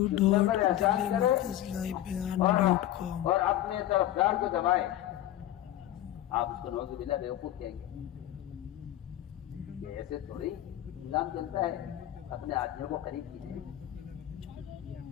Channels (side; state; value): right; quieter; 13.3 dB